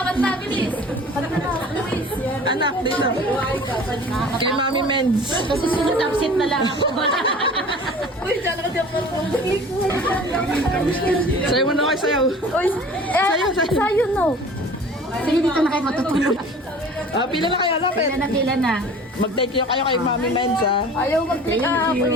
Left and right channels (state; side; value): normal; both; correlation 0.44